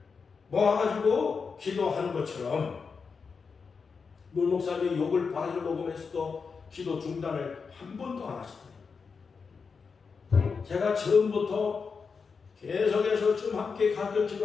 모아가지고 기도하는 것처럼 문 목사님이 욕을 바가지로 먹으면서도 기도 중단을 한 번도 안 하시더라고요. 제가 처음부터 계속해서 좀 함께 가르쳐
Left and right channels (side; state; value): right; quieter; 5.3 dB